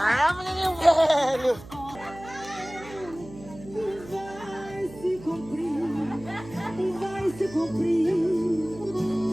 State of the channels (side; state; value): right; noise; hum, 17 dB below the sound